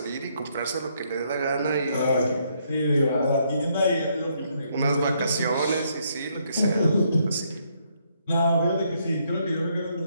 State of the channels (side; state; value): both; inverted; correlation -0.72